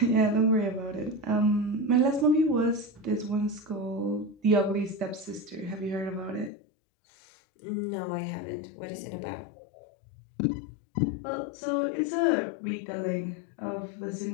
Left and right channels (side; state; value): right; drops out; at 6.5 s